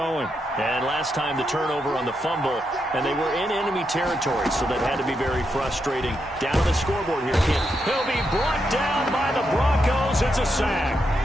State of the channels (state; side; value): normal; both; correlation 0.83